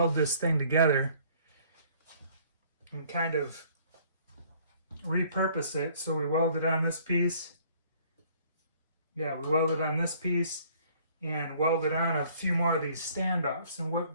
this thing together and kind of repurpose it. So we welded on this piece. Yeah, we welded on this piece and welded on a few more of these standoffs. And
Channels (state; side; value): inverted; both; correlation -0.58